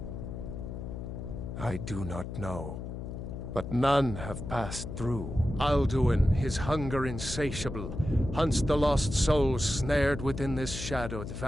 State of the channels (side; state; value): left; noise; hum, 7 dB below the sound